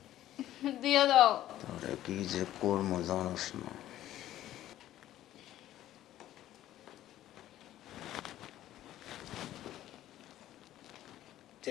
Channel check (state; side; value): quieter; right; 13.3 dB